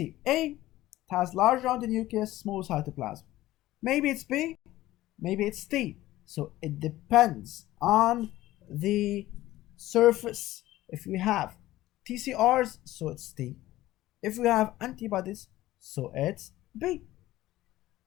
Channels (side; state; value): right; quieter; 16.0 dB